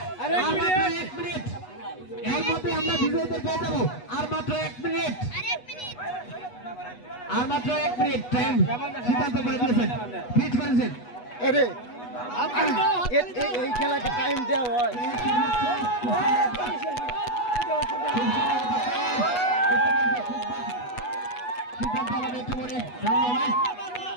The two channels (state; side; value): late; right; 8.2 ms